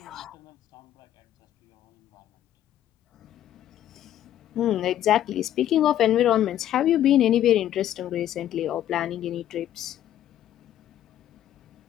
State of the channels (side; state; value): right; quieter; 11.7 dB